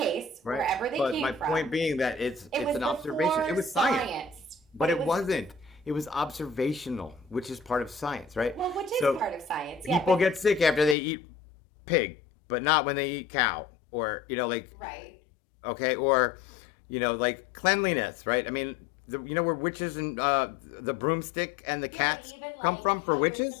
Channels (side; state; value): right; drops out; at 11.0 s